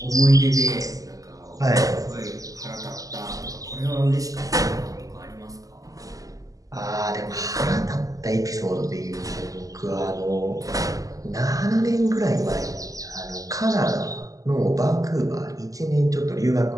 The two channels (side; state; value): left; late; 0.17 ms